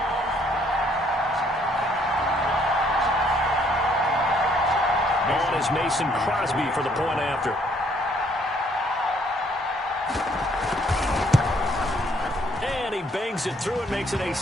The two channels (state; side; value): normal; both; correlation 0.66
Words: On is Mason Crosby for the point after. And he bangs it through and makes it a